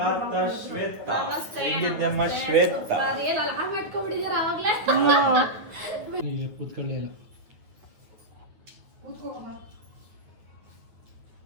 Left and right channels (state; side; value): late; left; 9.3 ms